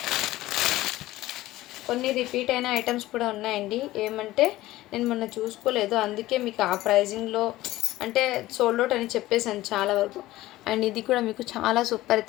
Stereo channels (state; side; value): quieter; right; 16.7 dB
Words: కొన్ని రిపీట్ అయిన ఐటమ్స్ కూడా ఉన్నాయండి. ఏమంటే నేను మొన్న చూసుకోలేదు, అందుకే మీకు ఆ ప్రైజింగ్లో అంటే సోల్డ్ అవుట్ అని చెప్పేసాను చాలా వరకు. అండ్ ఇది కూడా మీకు చాలా సూపర్